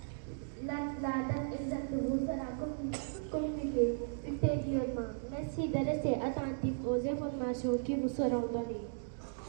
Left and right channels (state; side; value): silent; left; digital silence